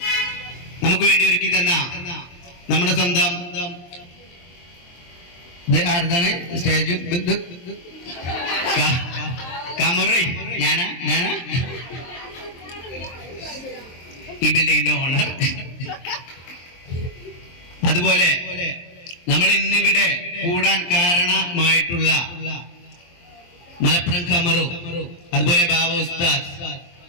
നമുക്ക് വേണ്ടി ഒരുക്കി തന്ന നമ്മുടെ സ്വന്തം ആർക്കാണ് സ്റ്റേജ് കാമറി ഞാനാ ഈ ബിൽഡിങ്ങിന്റെ ഓണർ. അതുപോലെ നമ്മൾ ഇന്നിവിടെ കൂടാൻ കാരണമായിട്ടുള്ള മലപ്പുറം കമറു, അതുപോലെ ബാബ ഉസ്താദ്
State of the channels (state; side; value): late; right; 23 ms